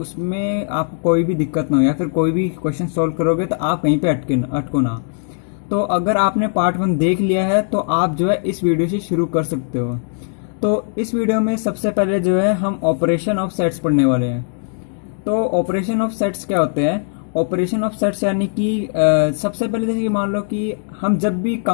आपको कोई भी दिक्कत ना हो, या फिर कोई भी क्वेश्चन सोल्व करोगे तो आप कहीं पे अटको ना। तो अगर आपने पार्ट 1 देख लिया है तो आप जो है इस वीडियो से शुरू कर सकते हो। तो इस वीडियो में सबसे पहले जो है हम ऑपरेशन ऑफ सेट्स पढ़ने वाले हैं। तो ऑपरेशन ऑफ सेट्स क्या होते हैं? ऑपरेशन ऑफ सेट्स यानी कि सबसे पहले जैसे कि मान लो कि हम जब भी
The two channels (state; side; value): silent; right; digital silence